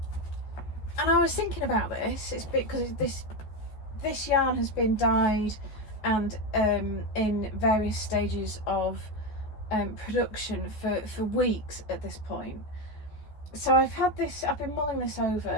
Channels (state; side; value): late; right; 14 ms